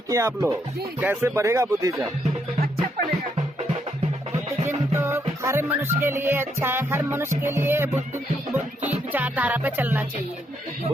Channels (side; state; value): both; normal; correlation 0.76